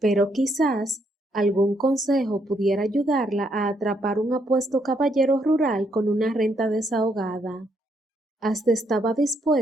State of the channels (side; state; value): both; normal; correlation 0.74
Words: quizás algún consejo pudiera ayudarla a atrapar un apuesto caballero rural con una renta desahogada. Hasta estaba